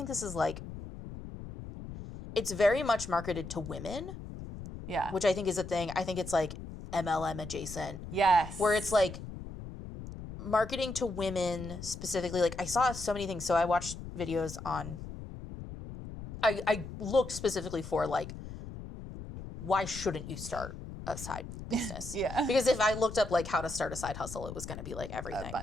this is like, it's very much marketed to women. Yeah. Which I think is a thing. I think it's like MLM adjacent. Yes. Where it's like marketing to women specifically. Like I saw so many things. So I watched videos on, I looked specifically for like, why shouldn't you start a side business? Because if I looked up like how to start a side hustle, it was going to be like everything. A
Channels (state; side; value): noise; left; rumble, 10 dB below the sound